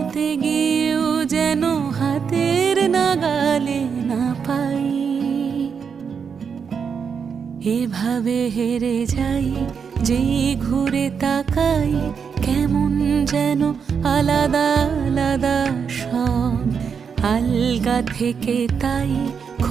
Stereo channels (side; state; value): left; quieter; 6.5 dB